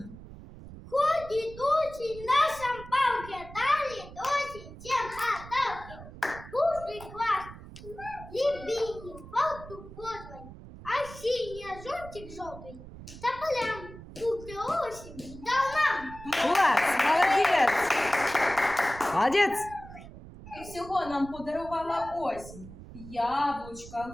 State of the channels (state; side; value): noise; right; rumble, 15 dB below the sound